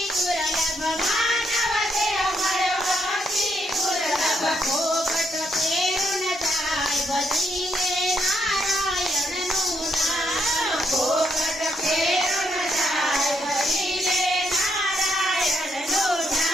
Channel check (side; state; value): both; normal; correlation 0.77